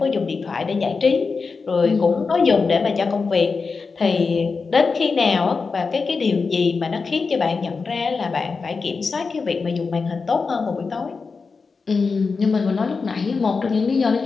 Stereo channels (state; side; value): quieter; right; 4.6 dB